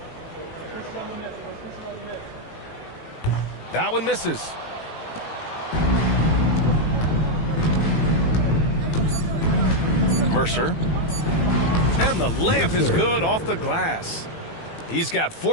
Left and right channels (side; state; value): right; late; 18 ms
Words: That one misses. Mercer. And the layup is good off the glass. He's got